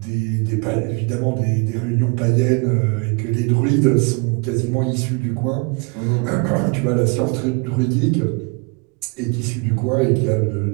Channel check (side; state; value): left; quieter; 32.3 dB